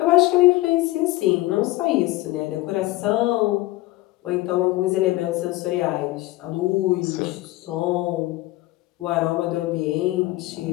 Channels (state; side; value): quieter; right; 18.8 dB